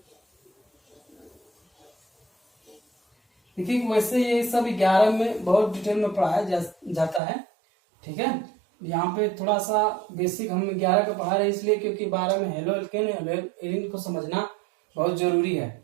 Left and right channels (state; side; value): drops out; left; at 7.2 s